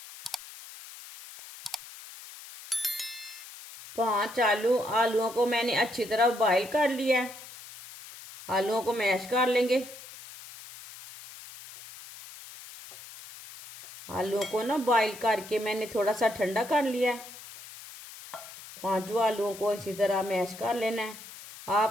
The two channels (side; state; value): left; noise; hiss, 16 dB below the sound